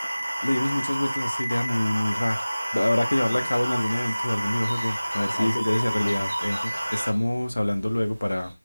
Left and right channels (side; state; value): both; inverted; correlation -0.99